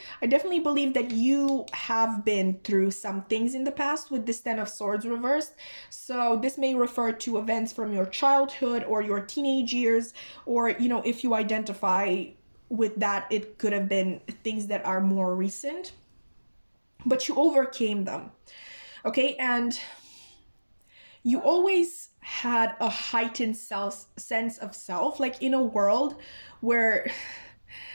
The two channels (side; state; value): both; inverted; correlation -1.00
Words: I definitely believe that you have been through some things in the past with this Ten of Swords reversed. So this may refer to events from your childhood or your teenage years, or, you know, if you identify with that, it could have been things that are more recent, but you overcame them. Okay, and you always had a heightened sense of self, like in a world where